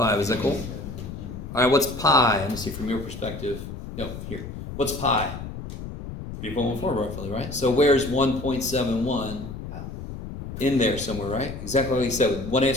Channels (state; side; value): noise; left; rumble, 9 dB below the sound